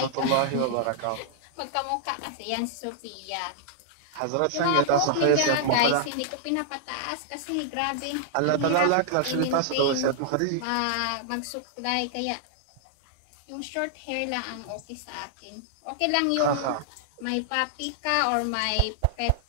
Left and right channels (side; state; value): both; different; correlation -0.01